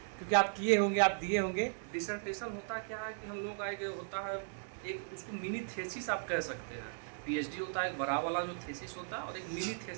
क्योंकि आप किए होंगे, आप दिए होंगे। डिसर्टेशन होता क्या है कि हम लोग का एक होता है एक उसको मिनी थेसिस आप कह सकते हैं। पीएचडी होता है एक बड़ा वाला जो थेसिस होता है, और एक मिनी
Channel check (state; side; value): silent; left; digital silence